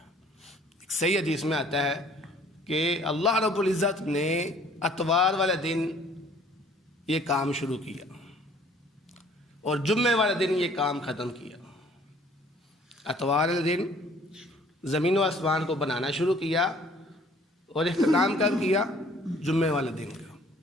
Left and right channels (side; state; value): both; normal; correlation 0.56